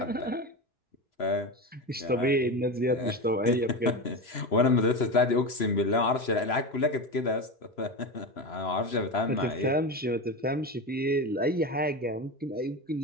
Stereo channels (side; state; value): both; normal; correlation 0.21